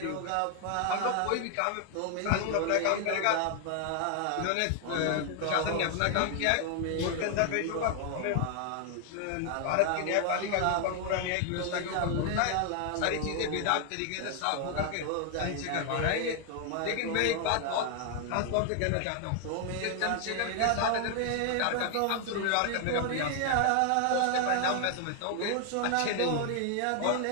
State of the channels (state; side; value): different; both; correlation 0.00